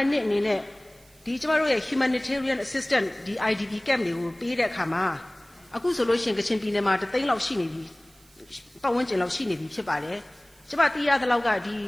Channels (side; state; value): right; noise; hiss, 29 dB below the sound